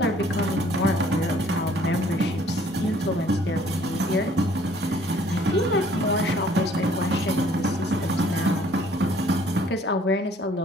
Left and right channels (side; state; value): both; normal; correlation 0.59